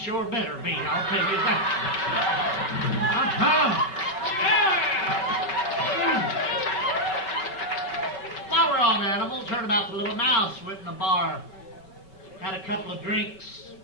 better be, I'll tell you that." While we're on animals, heard about the little mouse went in the bar, had a couple of drinks,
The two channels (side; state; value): right; late; 5.3 ms